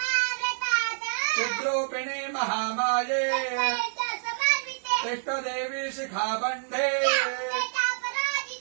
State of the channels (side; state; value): left; silent; 56 dB below the other